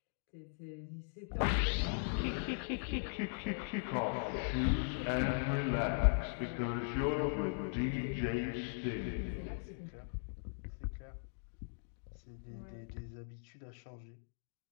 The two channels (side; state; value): right; silent; digital silence